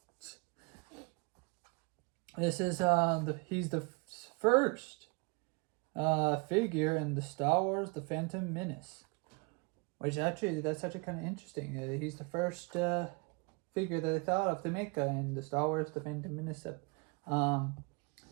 This is he's the first figure in the Star Wars The Phantom Menace, which actually that's actually kind of interesting. He's the first figure that they thought of to make in the Star Wars The Phantom Menace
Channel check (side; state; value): left; quieter; 29.8 dB